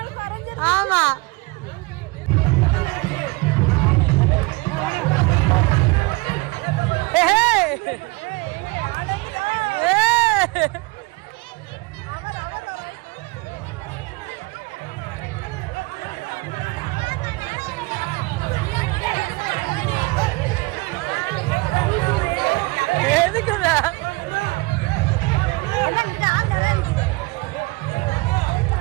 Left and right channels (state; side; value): quieter; left; 24.5 dB